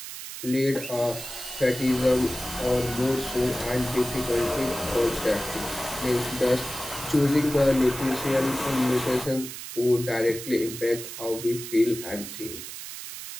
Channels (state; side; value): noise; right; hiss, 10 dB below the sound